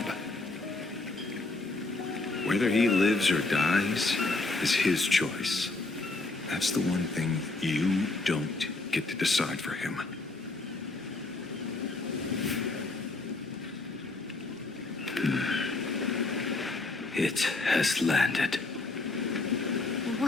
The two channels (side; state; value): right; quieter; 3.3 dB